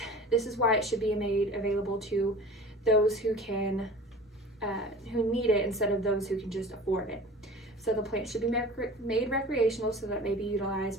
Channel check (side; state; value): both; normal; correlation 0.40